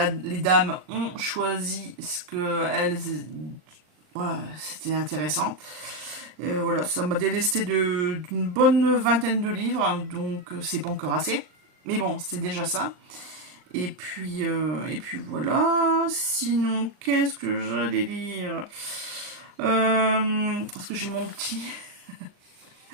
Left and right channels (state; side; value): late; left; 39 ms